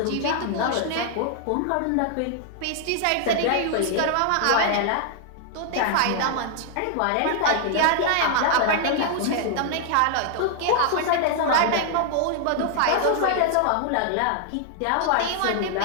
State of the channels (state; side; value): different; both; correlation 0.00